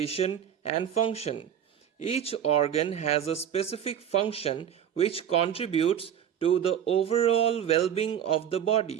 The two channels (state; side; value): quieter; left; 9.4 dB